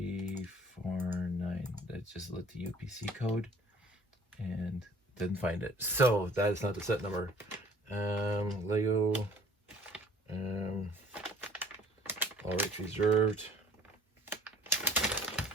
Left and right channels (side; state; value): both; normal; correlation 0.52